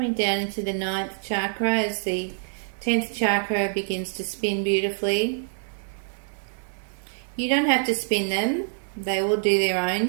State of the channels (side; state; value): left; silent; digital silence